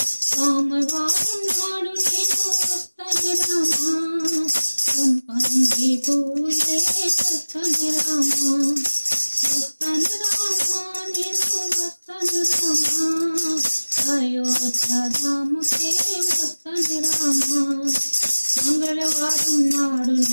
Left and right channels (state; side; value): inverted; both; correlation -1.00